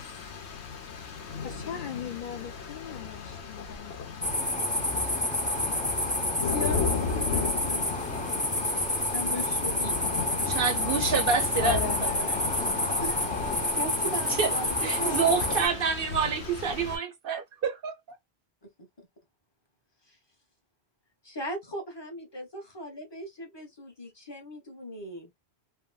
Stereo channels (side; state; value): both; normal; correlation -0.06